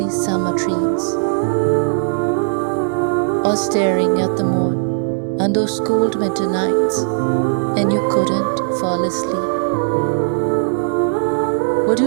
summer dreams, or staring at the moon on those cold winter nights and you couldn't fall asleep? Would do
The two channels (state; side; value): silent; left; digital silence